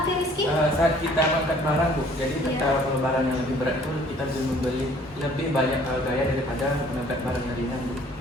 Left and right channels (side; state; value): both; normal; correlation 0.56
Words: oke Rizky. Saat kita mengangkat barang, Bu, jadi Iya. ketika barang yang lebih berat itu kita bisa membeli lebih banyak gaya daripada mengangkat barang yang ringan, Bu.